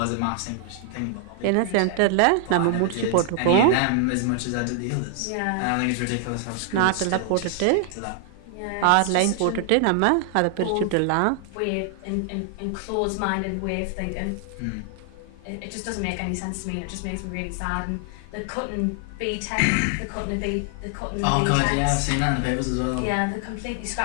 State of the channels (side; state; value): both; different; correlation 0.00